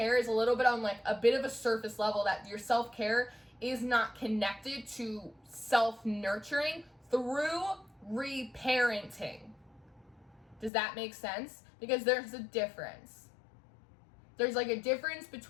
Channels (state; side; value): drops out; right; at 10.7 s